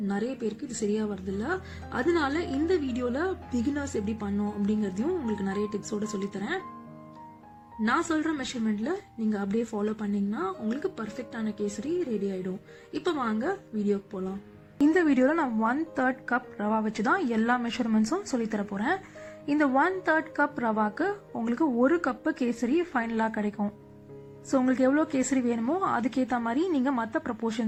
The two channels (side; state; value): both; identical; correlation 1.00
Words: நிறைய பேருக்கு இது சரியா வருது இல்ல. அதனால இந்த வீடியோல பிகினர்ஸ் எப்படி பண்ணோம் அப்படிங்கறதையும் உங்களுக்கு நிறைய டிப்ஸோட சொல்லித்தரேன். நான் சொல்ற மெஷர்மெண்ட்ல நீங்க அப்படியே ஃபாலோ பண்ணீங்கன்னா உங்களுக்கு பர்ஃபெக்டான கேசரி ரெடி ஆயிடும். இப்ப வாங்க வீடியோக்கு போலாம். இந்த வீடியோல நான் 1/3 கப் ரவா வச்சுதான் எல்லா மெஷர்மெண்ட்ஸும் சொல்லித்தர போறேன். இந்த 1/3 கப் ரவாக்கு உங்களுக்கு 1 கப் கேசரி ஃபைனலா கிடைக்கும். ஸோ உங்களுக்கு எவ்வளோ கேசரி வேணுமோ அதுக்கேற்ற மாதிரி நீங்கள் மற்ற